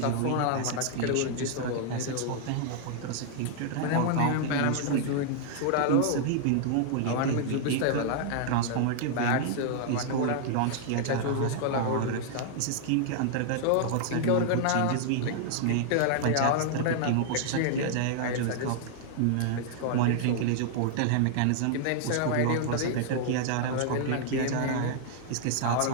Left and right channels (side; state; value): both; different; correlation -0.01